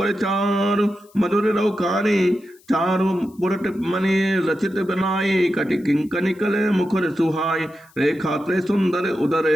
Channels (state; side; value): noise; left; hiss, 30 dB below the sound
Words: चारु मधुर रौकारी। चारु पुरट मणि रचित बनाई, कटि किंकनिकल मुखर सुहाई। रेखा त्रय सुंदर उदर,